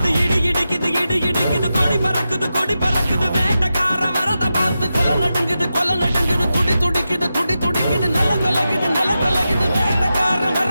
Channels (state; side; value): inverted; both; correlation -0.90